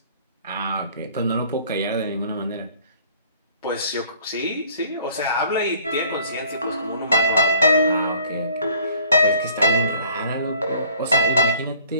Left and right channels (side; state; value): both; inverted; correlation -0.56